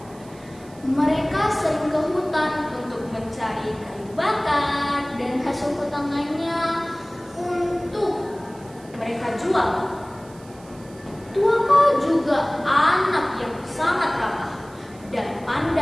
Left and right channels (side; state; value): right; noise; hiss, 25 dB below the sound